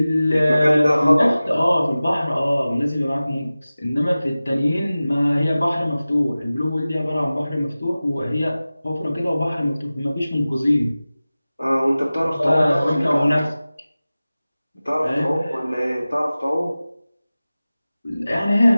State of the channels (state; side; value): inverted; both; correlation -0.97